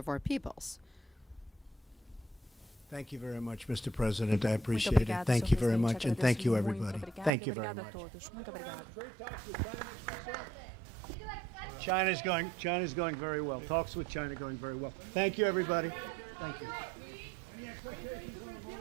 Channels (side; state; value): left; drops out; at 7.3 s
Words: our peoples. Thank you very much, Mr. President. I appreciate it. Thank you very much, and thank you, everybody. Thank you very much. China's going very well. Talks with China going very well. Thank you, everybody. Thank you.